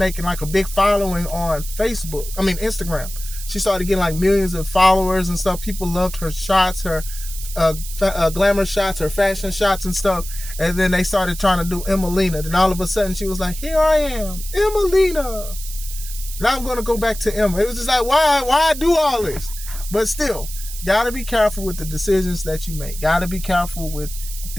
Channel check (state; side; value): noise; right; hiss, 11 dB below the sound